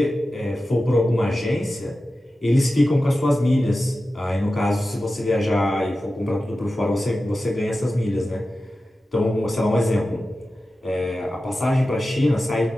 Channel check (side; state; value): both; normal; correlation 0.94